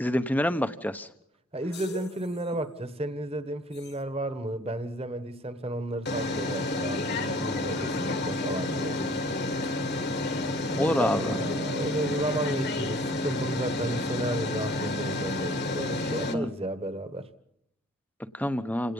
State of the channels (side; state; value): both; normal; correlation 0.56